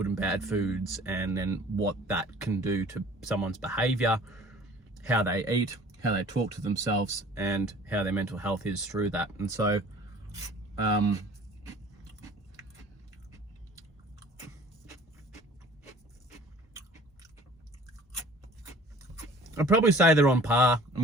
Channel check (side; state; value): both; normal; correlation 0.49